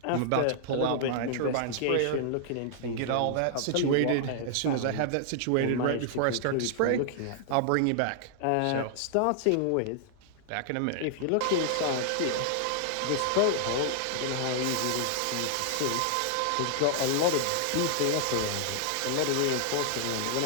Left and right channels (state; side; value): different; both; correlation -0.01